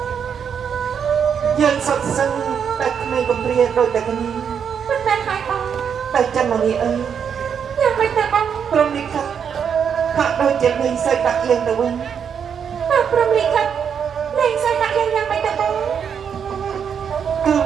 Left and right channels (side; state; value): left; quieter; 7.4 dB